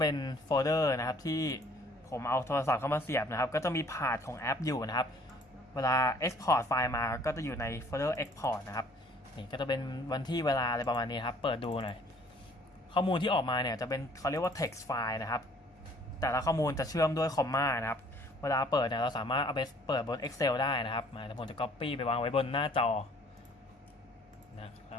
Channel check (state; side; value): normal; both; correlation 0.57